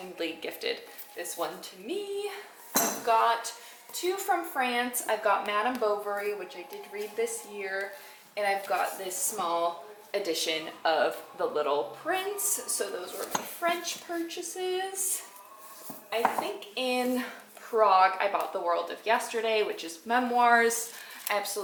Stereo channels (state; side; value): identical; both; correlation 1.00